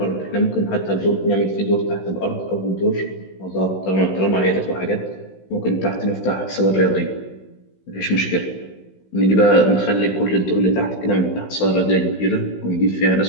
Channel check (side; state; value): right; late; 16 ms